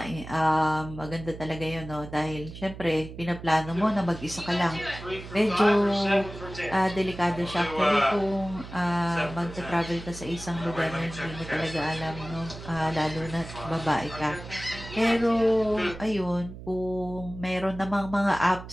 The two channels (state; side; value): noise; right; hum, 13 dB below the sound